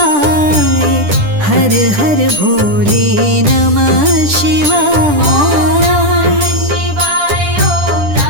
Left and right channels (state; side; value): late; left; 10 ms